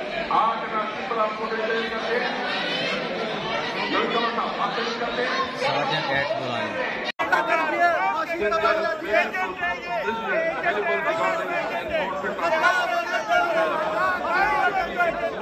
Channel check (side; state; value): both; identical; correlation 1.00